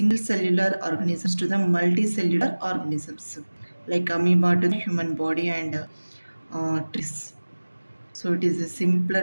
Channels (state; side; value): inverted; both; correlation -1.00